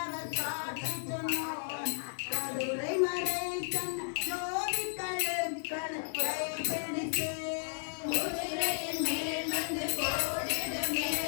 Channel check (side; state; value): right; silent; 55 dB below the other